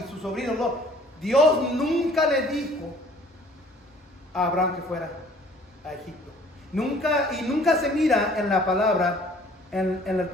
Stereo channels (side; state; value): both; normal; correlation 0.55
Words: su sobrino Lot, Dios nunca le dijo a Abraham que fuera a Egipto. Nunca se mira en la palabra